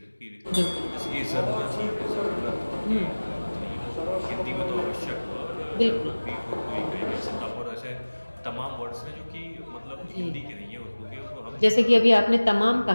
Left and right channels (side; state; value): both; inverted; correlation -1.00